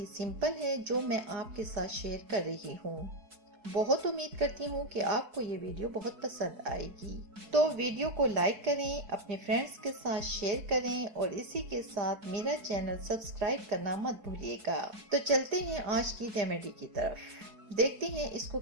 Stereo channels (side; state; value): left; late; 4.6 ms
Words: सिंपल है जो मैं आपके साथ शेयर कर रही हूँ। बहुत उम्मीद करती हूँ कि आपको ये वीडियो बहुत पसंद आएगी। तो वीडियो को लाइक करें, अपने फ्रेंड्स के साथ शेयर करें और इसी के साथ मेरा चैनल सब्सक्राइब करना मत भूलिएगा। तो चलते हैं आज की रेमेडी की तरफ, देखते हैं इसको